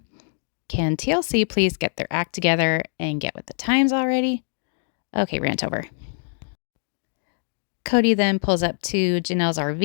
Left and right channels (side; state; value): right; silent; digital silence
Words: Can TLC please get their act together and get with the times already? Okay, rant over. Cody then pulls up to Janelle's